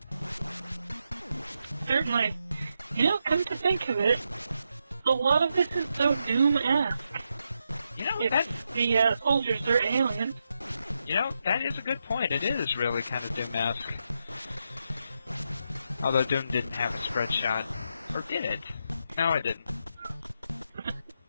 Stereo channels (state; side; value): inverted; both; correlation -0.84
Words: Certainly. You know, come to think of it, a lot of this is so Doom-esque. You know, if the soldiers are aliens. You know, that is a good point. It is really kind of Doom-esque. Although Doom didn't have a spread shot. Or did it? No, it didn't.